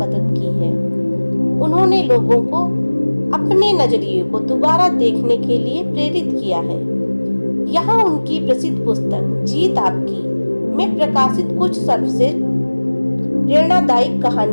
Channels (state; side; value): inverted; both; correlation -1.00